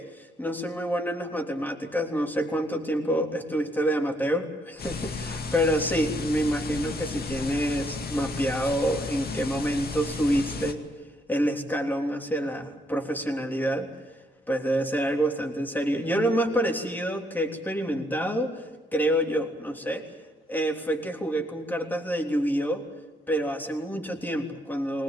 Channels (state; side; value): normal; both; correlation 0.72